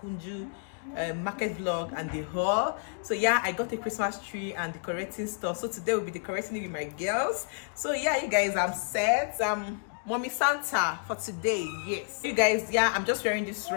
market vlog and the haul. So yeah, I got a Christmas tree and decorating stuff. So today we'll be decorating it with my girls. So yeah, you guys, I'm set. Mommy Santa for today. Yes, you guys, yeah, I'm just wearing this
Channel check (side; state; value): right; silent; digital silence